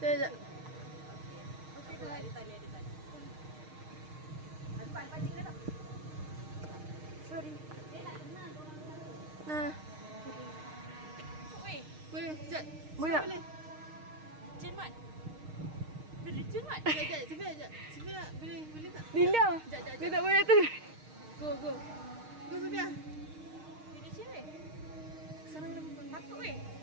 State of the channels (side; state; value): left; late; 6.5 ms